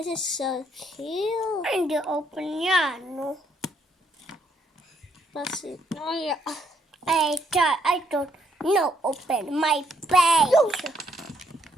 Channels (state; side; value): normal; both; correlation 0.71